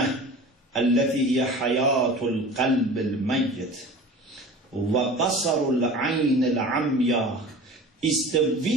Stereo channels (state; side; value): normal; both; correlation 0.38